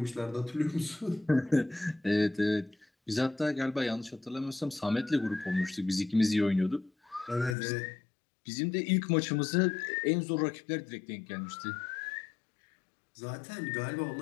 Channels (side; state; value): right; drops out; at 7.6 s